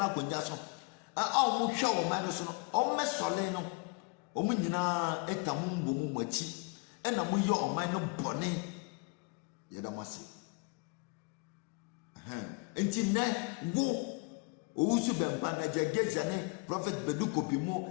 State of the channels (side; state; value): right; quieter; 29.7 dB